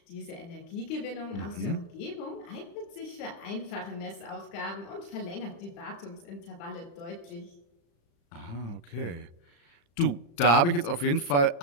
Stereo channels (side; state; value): right; late; 35 ms